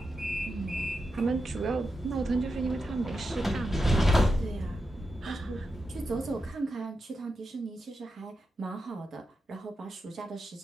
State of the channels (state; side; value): normal; both; correlation 0.88